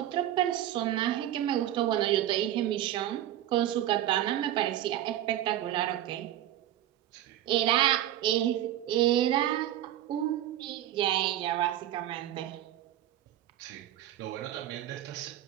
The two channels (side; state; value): left; quieter; 12.8 dB